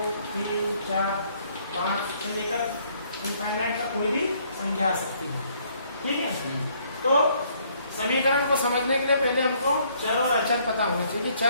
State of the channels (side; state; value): both; inverted; correlation -0.65